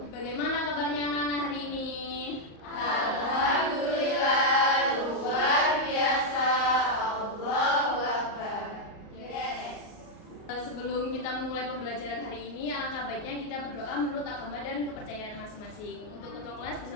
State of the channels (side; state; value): right; late; 38 ms